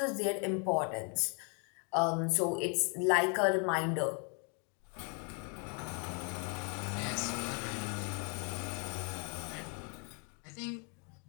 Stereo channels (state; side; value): quieter; right; 37.6 dB